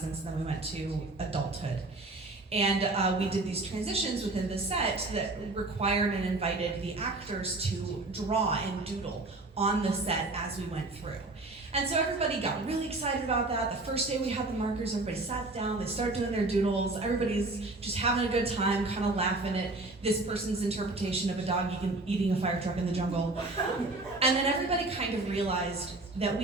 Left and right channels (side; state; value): left; quieter; 3.0 dB